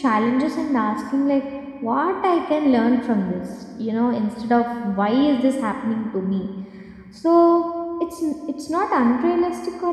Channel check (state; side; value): identical; both; correlation 1.00